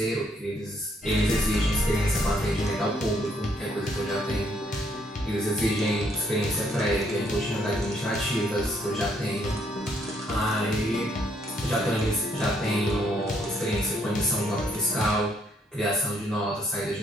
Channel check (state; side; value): normal; both; correlation 0.71